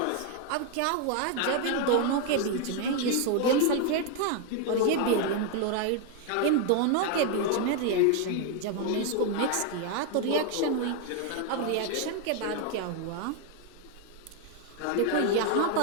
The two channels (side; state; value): both; different; correlation 0.01